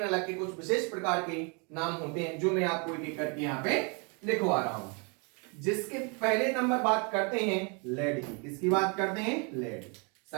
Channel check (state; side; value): quieter; left; 34.0 dB